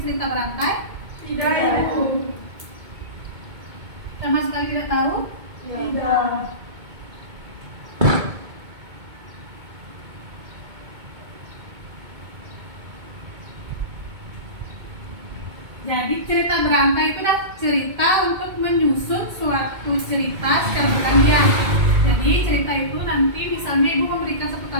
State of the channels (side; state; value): left; late; 2.2 ms